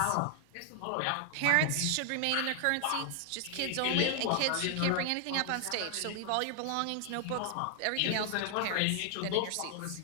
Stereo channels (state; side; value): different; both; correlation 0.00